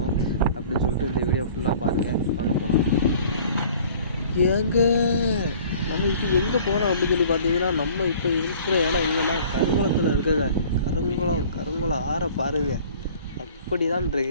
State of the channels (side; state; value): both; inverted; correlation -0.49